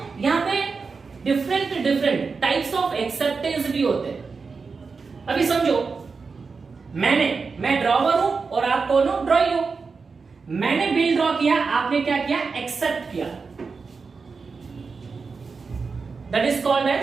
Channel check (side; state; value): left; quieter; 4.8 dB